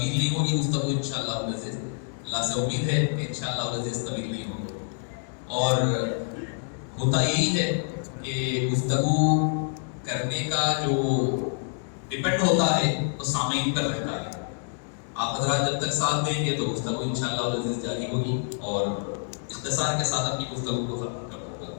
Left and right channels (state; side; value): silent; right; digital silence